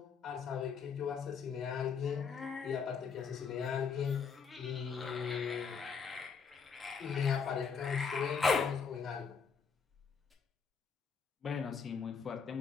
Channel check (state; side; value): quieter; right; 6.0 dB